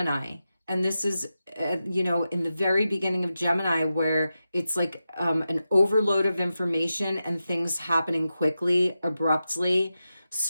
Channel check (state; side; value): inverted; both; correlation -0.91